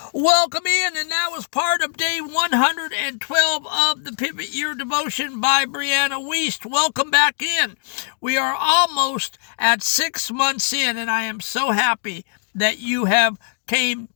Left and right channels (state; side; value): silent; right; 65 dB below the other